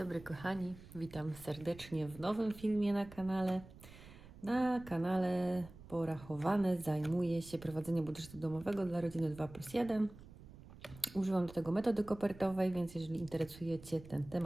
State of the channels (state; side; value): noise; right; rumble, 18 dB below the sound